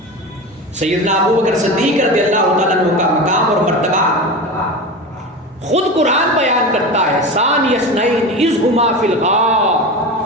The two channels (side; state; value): both; normal; correlation 0.26